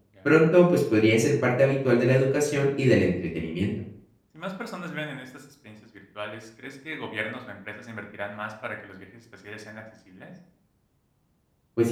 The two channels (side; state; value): both; identical; correlation 1.00